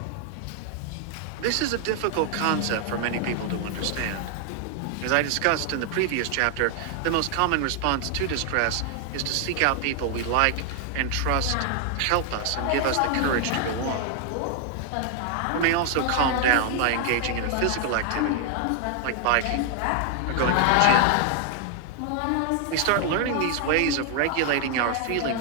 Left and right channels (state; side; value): different; both; correlation 0.00